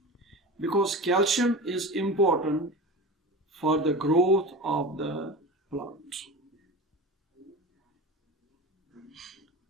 Because calcium is important for the growth of the plant.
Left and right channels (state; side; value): normal; both; correlation 0.30